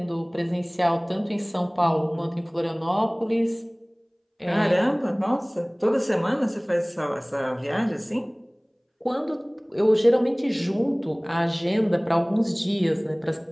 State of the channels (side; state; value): both; identical; correlation 1.00